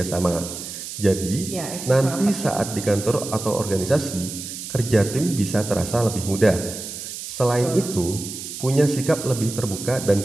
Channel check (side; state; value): right; noise; hiss, 9 dB below the sound